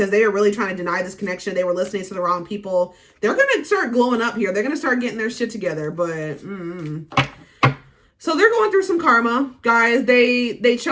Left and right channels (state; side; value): identical; both; correlation 1.00